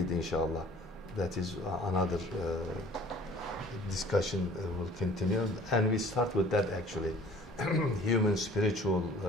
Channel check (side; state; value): both; normal; correlation 0.50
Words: inshallah. That is another discussion will continue. And we start with that actually, human spiritual